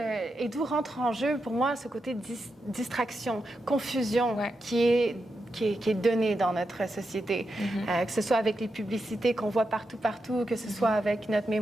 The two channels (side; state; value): both; normal; correlation 0.87